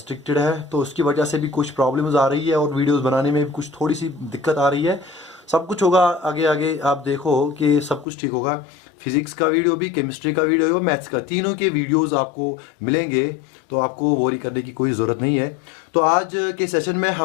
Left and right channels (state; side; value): drops out; right; at 8.1 s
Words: है, तो उसकी वजह से भी कुछ प्रॉब्लम्स आ रही है और वीडियोस बनाने में भी कुछ थोड़ी सी दिक्कत आ रही है। सब कुछ होगा आगे आगे, आप देखो कि सब कुछ ठीक होगा। फिजिक्स का वीडियो भी, केमिस्ट्री का वीडियो और मैथ्स का, तीनों के वीडियोस आपको मिलेंगे, तो आपको वरी करने की कोई ज़रूरत नहीं है। तो आज के सेशन में